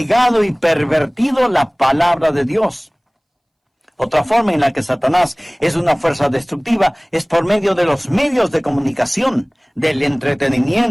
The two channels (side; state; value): both; identical; correlation 1.00